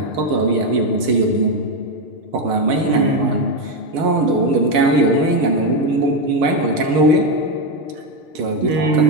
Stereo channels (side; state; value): left; late; 6.7 ms